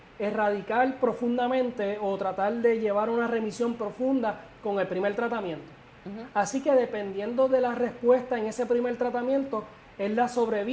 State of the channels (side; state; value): both; identical; correlation 1.00